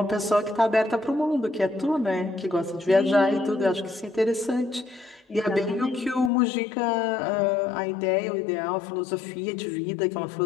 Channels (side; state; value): right; drops out; at 6.3 s